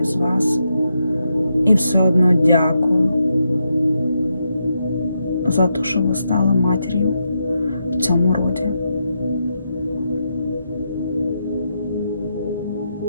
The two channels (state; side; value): inverted; both; correlation -0.83